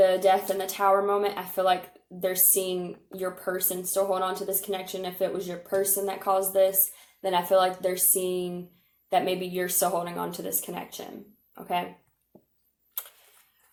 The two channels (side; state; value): both; identical; correlation 1.00